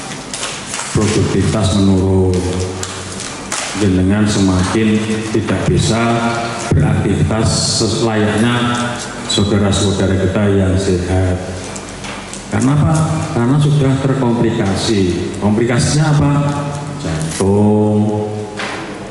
Produktivitas menurun, dengan semakin tidak bisa beraktivitas selayaknya saudara-saudara kita yang sehat. Karena apa? Karena sudah terkomplikasi. Komplikasinya apa? Jantung,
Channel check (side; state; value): both; identical; correlation 1.00